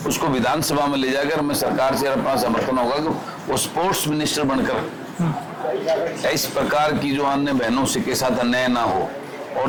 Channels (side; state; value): both; identical; correlation 1.00